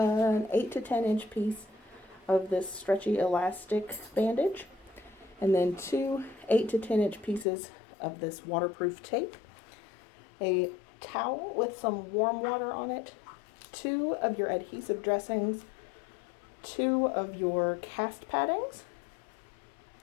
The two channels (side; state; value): right; drops out; at 7.5 s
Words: 8 to 10 inch piece of this stretchy elastic bandage, and then 2 8 to 10 inch pieces of this waterproof tape, a towel with some warm water on it, 2 of your adhesive dressings, 2 of your cast paddings,